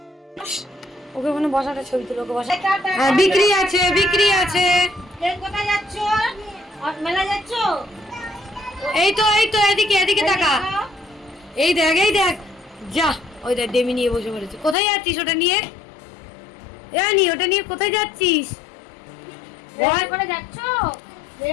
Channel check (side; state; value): right; drops out; at 14.8 s